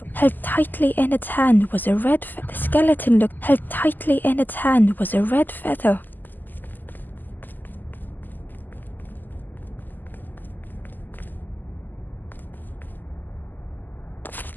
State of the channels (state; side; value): late; right; 0.088 ms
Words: Held tightly in its hand was a red feather. The skeleton looked held tightly in its hand was a red feather.